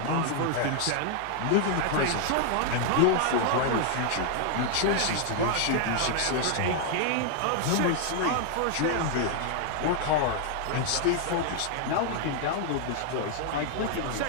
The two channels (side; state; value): both; different; correlation 0.00